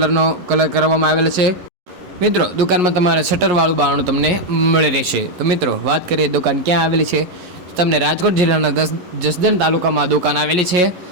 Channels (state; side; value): late; left; 11 ms